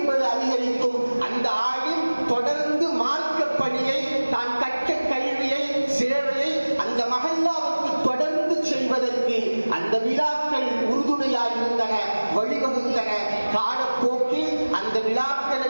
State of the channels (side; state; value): both; inverted; correlation -1.00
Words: அதிகரிக்கும். அந்த ஆலிம் தொடர்ந்து மார்க்க பணியை, தான் கற்ற கல்வியை, சேவையை அந்த மஹல்லாவுக்கு தொடர்ந்து செய்வதற்கு அந்த விழாக்கள் உறுதுணையாக இருந்தன, வழிவகுத்தன. காலப்போக்கில் அந்த விழாக்கள்